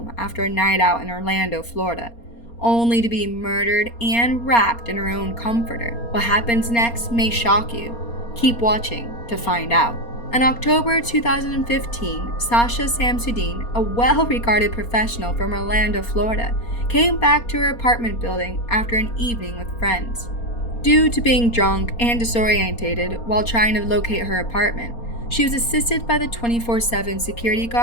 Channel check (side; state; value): right; late; 4.3 ms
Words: after a night out in Orlando, Florida, only to be murdered and wrapped in her own comforter. What happens next may shock you. Keep watching to find out. In October 2015, Sasha Samsudean, a well-regarded professional from Orlando, Florida, came back to her apartment building after an evening with friends. Due to being drunk and disorientated while trying to locate her apartment, she was assisted by the 24/7 security